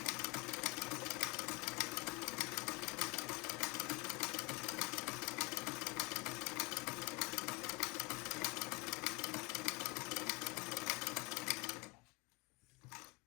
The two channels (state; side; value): quieter; right; 26.9 dB